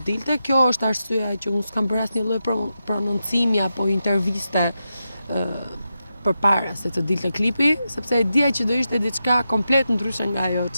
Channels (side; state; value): both; inverted; correlation -0.88